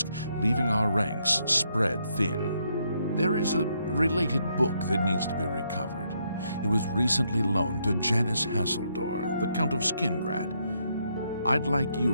leaving our ranks spread thin. There is a related book that needs to be recovered. It was recently loaned to Janice Hasseldor, the Count of Skingrad. I'd like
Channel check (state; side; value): inverted; both; correlation -0.76